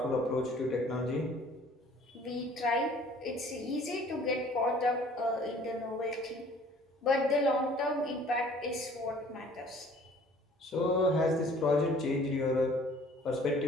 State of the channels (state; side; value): normal; both; correlation 0.53